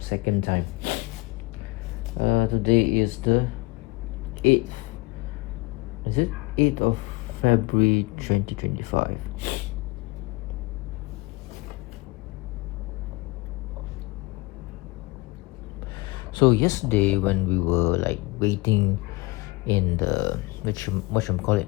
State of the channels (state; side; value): quieter; right; 23.3 dB